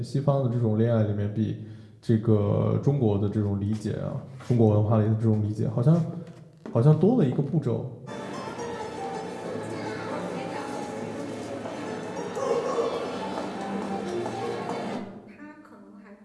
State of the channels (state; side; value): identical; both; correlation 1.00